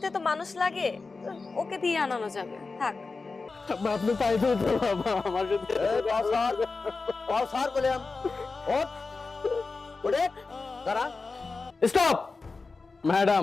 তো মানুষ লাগে, ওকে দিয়ে আনানো যাবে, থাক। আপনি তাই তো বাবা আমার সাথে স্যার বললাম ওঠ ওঠে দাঁড়া। স্টপ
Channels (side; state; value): right; quieter; 4.1 dB